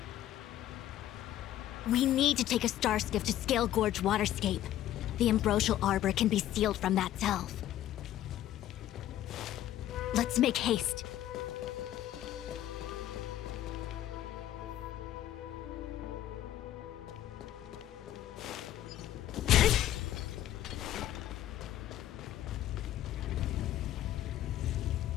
We need to take a star skiff to Scale Gorge Waterscape. The Ambrosial Arbor can be sealed from that delve. Let's make haste.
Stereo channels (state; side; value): quieter; right; 12.8 dB